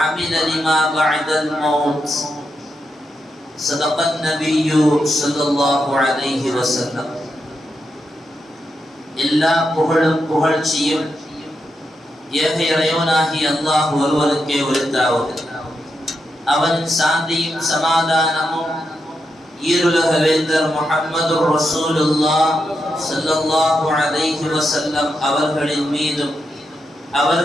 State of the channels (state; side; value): normal; both; correlation 0.85